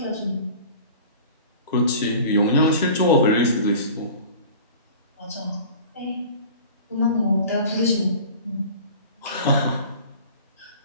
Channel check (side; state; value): both; inverted; correlation -0.42